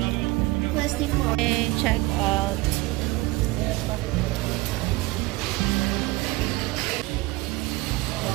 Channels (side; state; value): left; quieter; 20.7 dB